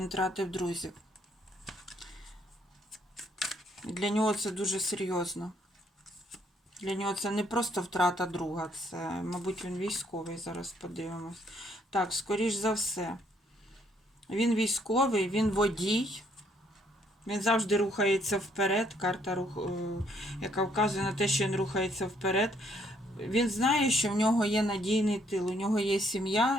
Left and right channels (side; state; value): both; normal; correlation 0.68